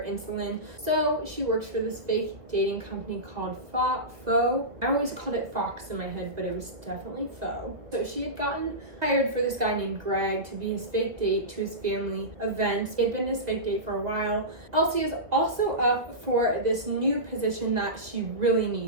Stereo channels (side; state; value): left; late; 1.8 ms